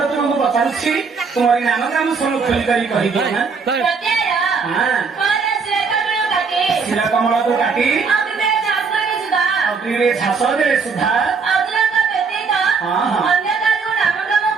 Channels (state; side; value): quieter; left; 5.1 dB